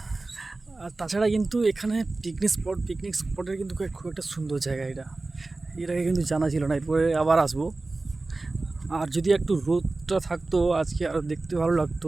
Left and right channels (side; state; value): left; quieter; 3.3 dB